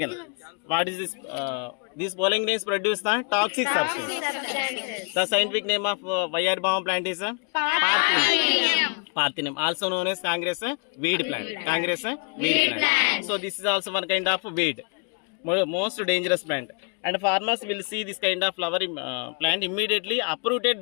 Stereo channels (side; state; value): right; quieter; 36.9 dB